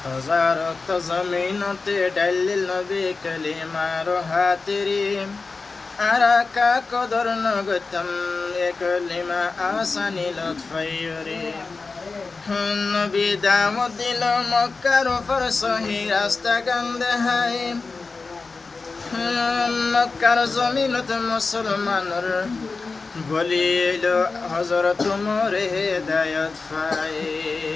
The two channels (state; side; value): quieter; right; 4.1 dB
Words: জমিনতে ডালিল নবী কলিমার হাতিরি আরাকা কদর নগতম এ কলিমা আসানি লতফাইরে নবী দামত দিল মক্কার উপর সহি রাস্তা গন্ধে হাই মক্কার জমিনত মুসলমানর বলিল হযরত মোরে হেদায়েত পাই